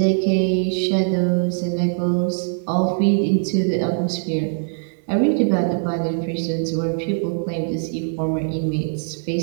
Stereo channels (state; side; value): silent; left; 56 dB below the other